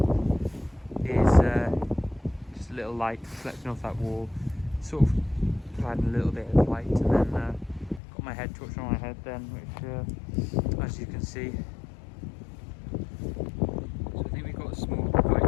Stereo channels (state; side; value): drops out; right; at 8.0 s